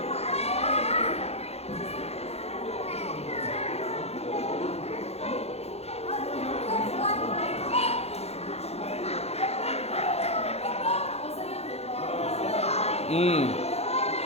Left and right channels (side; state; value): right; late; 0.30 ms